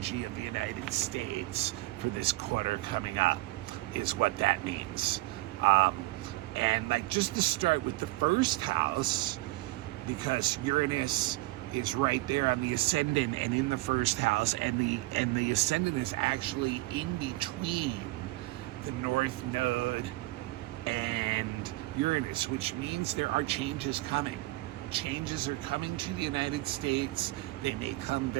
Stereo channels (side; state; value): left; quieter; 19.9 dB